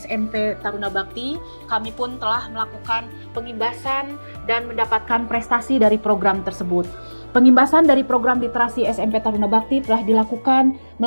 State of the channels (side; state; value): both; inverted; correlation -1.00